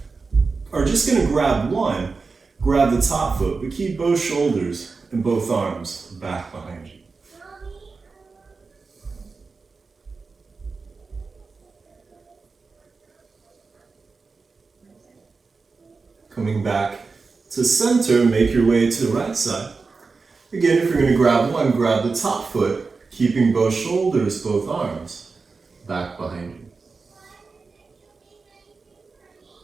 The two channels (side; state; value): left; quieter; 4.4 dB